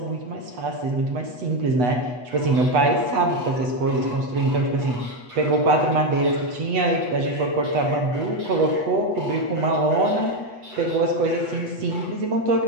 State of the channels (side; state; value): left; late; 8.1 ms